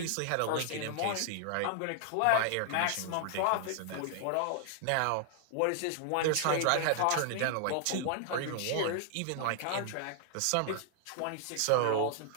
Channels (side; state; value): both; different; correlation 0.00